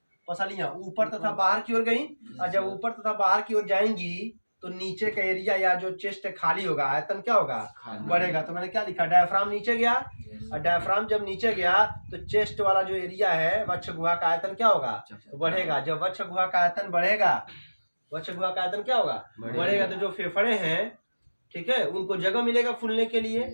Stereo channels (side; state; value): both; inverted; correlation -1.00